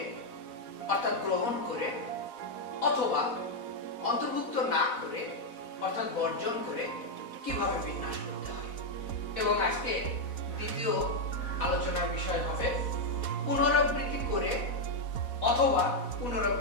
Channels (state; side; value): late; right; 4.1 ms